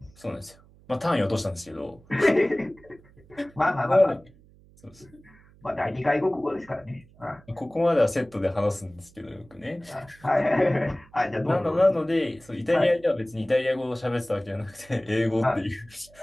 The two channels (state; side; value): noise; right; hum, 26 dB below the sound